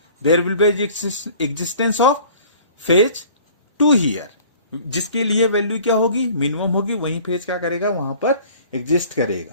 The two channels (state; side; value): inverted; both; correlation -0.49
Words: there will be existence of phase 2 here, जिसके लिए value क्या होगी, minimum होगी, वही phase क्या करेगा, वहां पर एग्जिस्ट